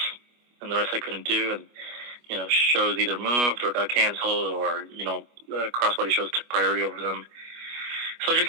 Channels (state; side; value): late; left; 25 ms